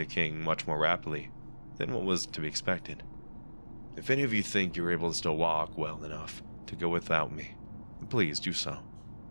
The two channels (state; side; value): inverted; both; correlation -1.00